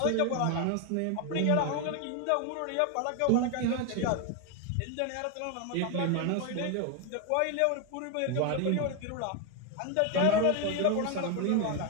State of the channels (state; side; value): different; both; correlation 0.01